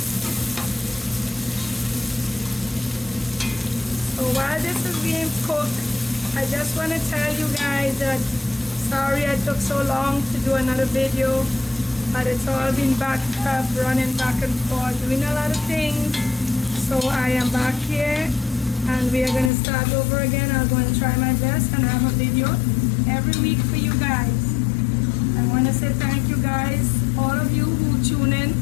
So while this is being cooked, I just want to tell you guys that sorry I took so long to do another video, but it's all been backed up, running back and forth, doing a lot of things. So I am back here and we are going to start over again. I'm going to try my best and have a video every week for you guys. I want to say thank you guys, all of you who tune in,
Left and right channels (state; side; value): drops out; right; at 19.5 s